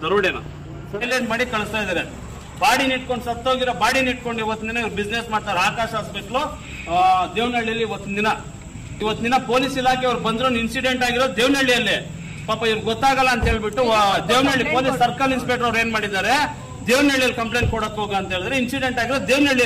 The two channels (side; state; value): both; identical; correlation 1.00